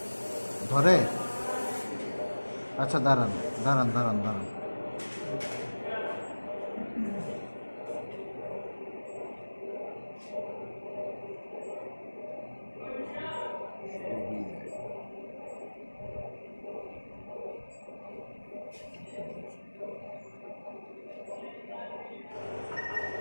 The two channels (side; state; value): both; inverted; correlation -1.00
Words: ধরে। আচ্ছা দাঁড়ান দাঁড়ান দাঁড়ান দাঁড়ান,